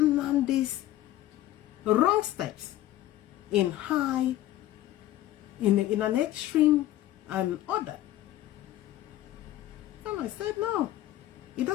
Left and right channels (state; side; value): quieter; right; 14.2 dB